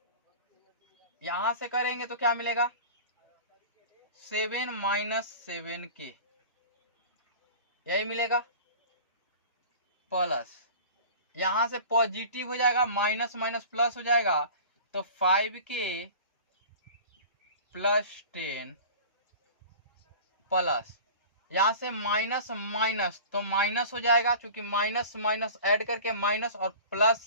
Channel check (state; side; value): inverted; both; correlation -0.39